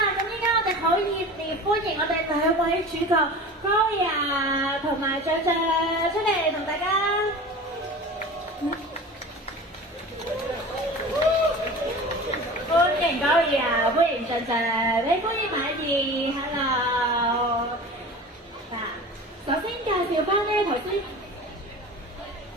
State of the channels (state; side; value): normal; both; correlation 0.36